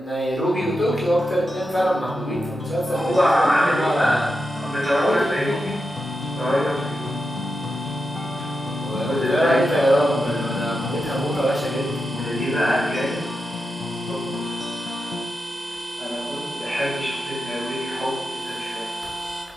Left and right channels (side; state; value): both; normal; correlation 0.88